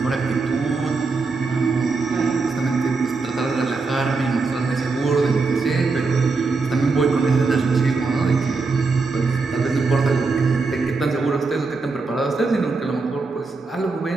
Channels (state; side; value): quieter; left; 4.1 dB